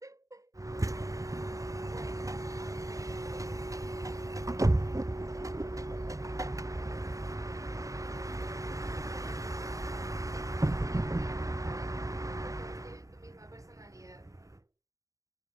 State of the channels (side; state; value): left; late; 0.16 ms